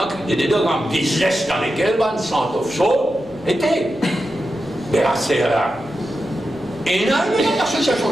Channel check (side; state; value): right; noise; rumble, 25 dB below the sound